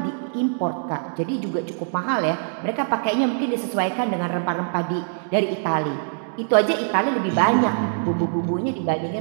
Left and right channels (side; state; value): left; silent; digital silence